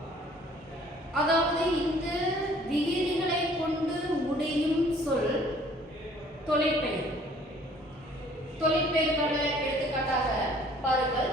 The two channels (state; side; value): normal; both; correlation 0.56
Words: அதாவது இந்த விகுதிகளை கொண்டு முடியும் சொல் தொழிற்பெயர். தொழிற்பெயருக்கான எடுத்துக்காட்டாக பாருங்கள்.